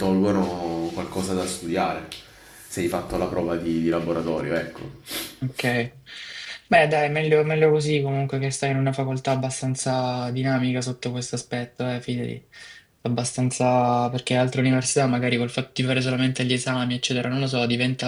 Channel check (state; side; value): identical; both; correlation 1.00